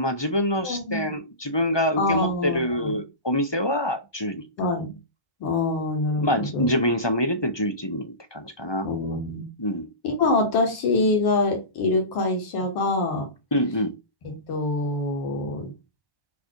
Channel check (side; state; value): right; late; 1.2 ms